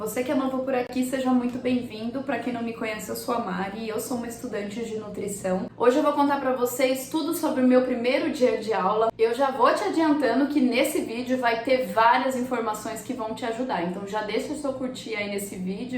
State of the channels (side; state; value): both; identical; correlation 1.00